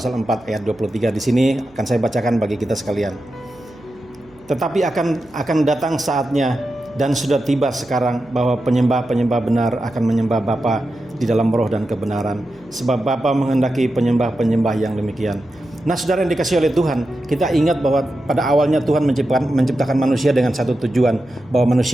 4 ayat 23. Di sini akan saya bacakan bagi kita sekalian. Tetapi akan datang saatnya dan sudah tiba sekarang bahwa penyembah-penyembah benar akan menyembah Bapa di dalam roh dan kebenaran, sebab Bapa menghendaki penyembah-penyembah yang demikian. Nah saudara yang dikasihi oleh Tuhan, kita ingat bahwa pada awalnya Tuhan menciptakan manusia dengan satu tujuan, bahwa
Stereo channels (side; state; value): right; noise; hum, 29 dB below the sound